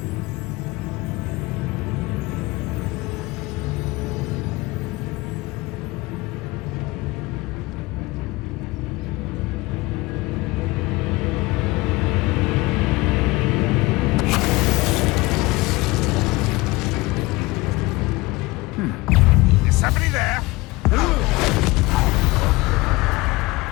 Is somebody there?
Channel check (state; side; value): quieter; right; 21.9 dB